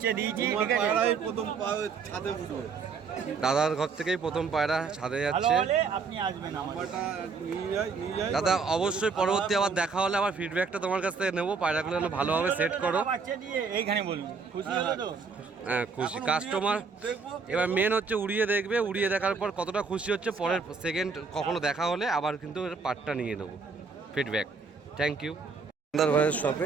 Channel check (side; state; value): left; quieter; 5.0 dB